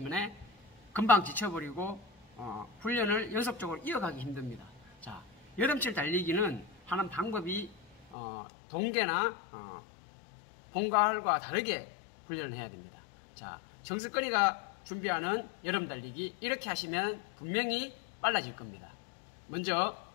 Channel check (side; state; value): right; drops out; at 8.2 s